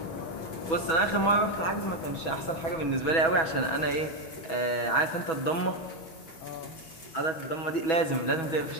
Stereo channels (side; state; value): right; late; 6.2 ms